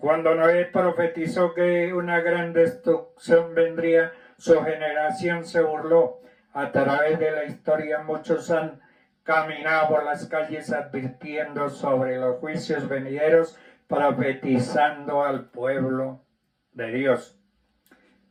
Noé profetizó que una gran destrucción vendría, su generación se burló. A través de la historia muchos han caminado por las calles advirtiendo sobre los juicios venideros, profetizando al pueblo de Dios.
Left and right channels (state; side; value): identical; both; correlation 1.00